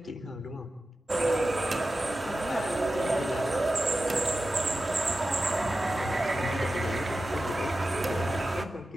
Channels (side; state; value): both; normal; correlation 0.93